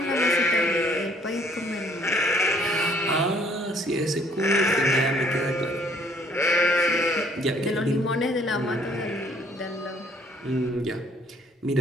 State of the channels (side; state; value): both; normal; correlation 0.61